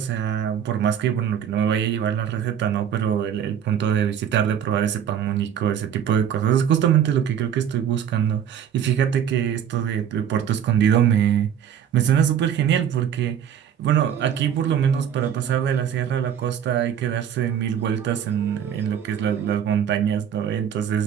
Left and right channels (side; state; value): left; quieter; 9.0 dB